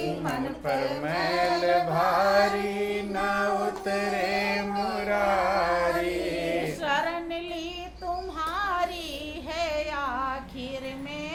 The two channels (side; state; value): both; identical; correlation 1.00